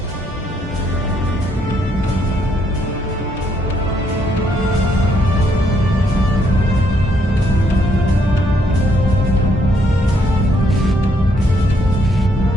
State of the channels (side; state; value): both; normal; correlation 0.72